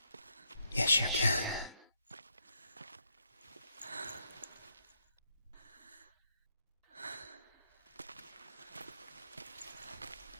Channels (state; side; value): inverted; both; correlation -0.76